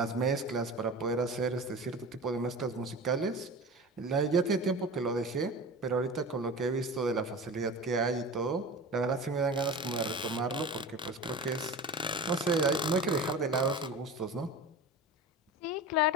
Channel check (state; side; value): normal; both; correlation 0.33